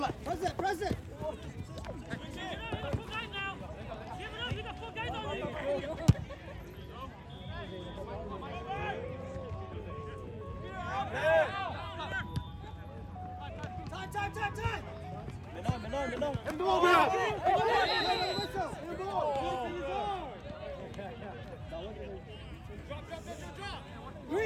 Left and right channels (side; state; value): both; identical; correlation 1.00